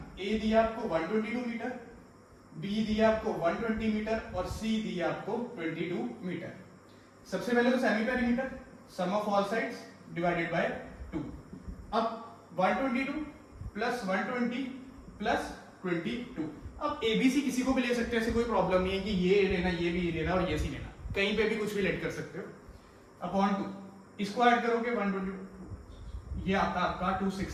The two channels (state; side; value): identical; both; correlation 1.00